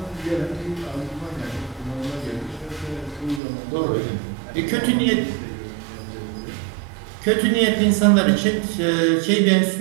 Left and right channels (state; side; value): drops out; left; at 3.4 s